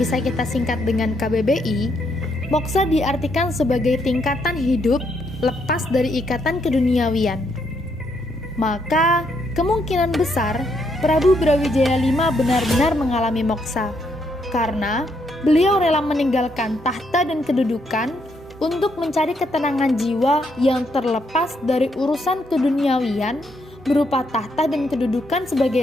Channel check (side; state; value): both; normal; correlation 0.75